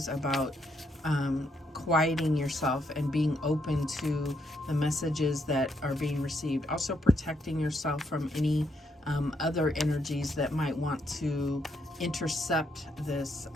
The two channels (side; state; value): both; normal; correlation 0.76